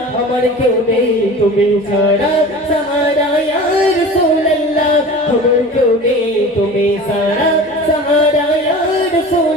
আমার কেউ নেই তুমি ছাড়া সাহারা ইয়া রাসূলুল্লাহ আমার কেউ নেই তুমি ছাড়া সাহারা ইয়া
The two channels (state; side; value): normal; both; correlation 0.37